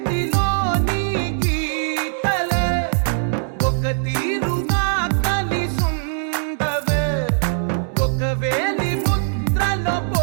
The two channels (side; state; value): left; silent; digital silence